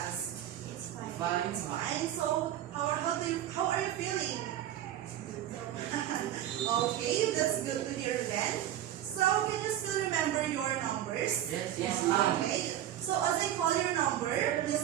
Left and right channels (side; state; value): left; quieter; 12.0 dB